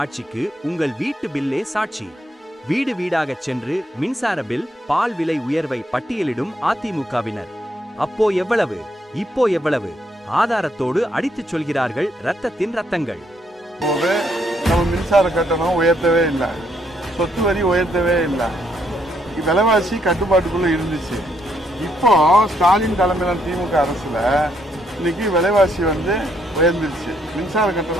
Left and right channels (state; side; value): normal; both; correlation 0.73